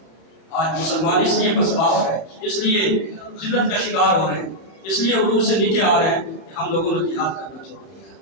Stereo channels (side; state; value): right; late; 31 ms